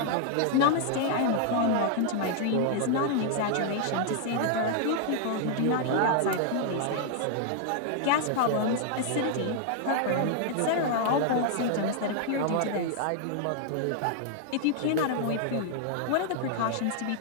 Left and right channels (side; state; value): both; different; correlation 0.00